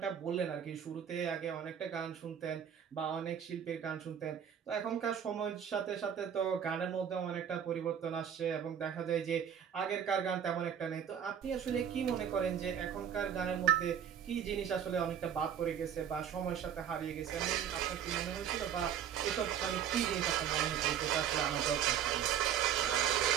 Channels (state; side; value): quieter; left; 8.8 dB